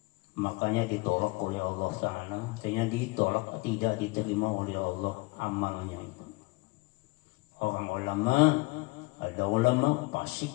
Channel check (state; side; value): quieter; right; 25.3 dB